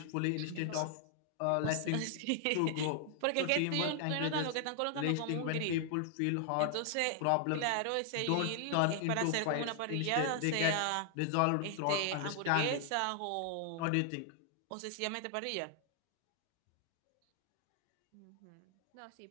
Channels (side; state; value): both; different; correlation 0.00